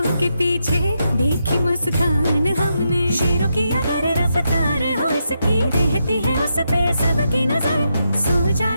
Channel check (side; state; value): both; inverted; correlation -0.83